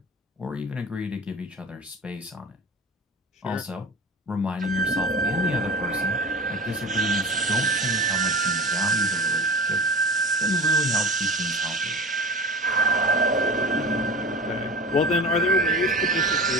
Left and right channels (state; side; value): normal; both; correlation 0.34